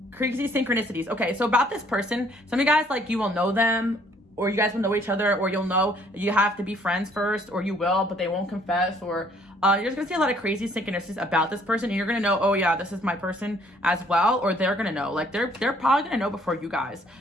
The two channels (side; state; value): both; normal; correlation 0.62